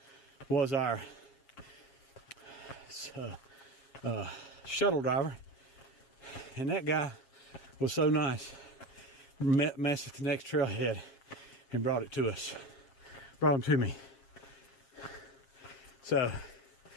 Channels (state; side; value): late; right; 7.4 ms